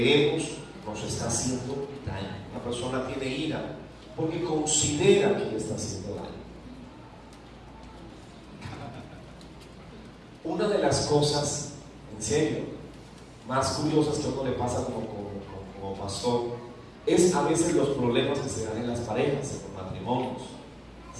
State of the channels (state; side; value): identical; both; correlation 1.00